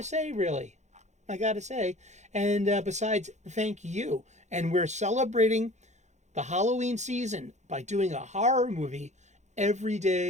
say really. I gotta say, and besides, thank you. And we're celebrating the Halloween season by doing a horror movie every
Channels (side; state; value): left; late; 0.34 ms